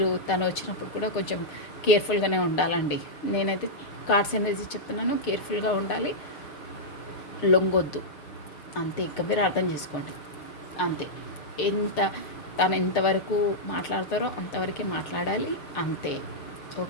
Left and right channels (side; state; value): right; late; 6.7 ms